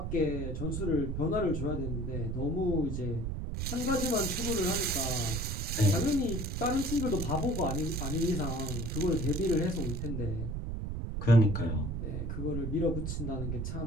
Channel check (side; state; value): right; noise; rumble, 3 dB below the sound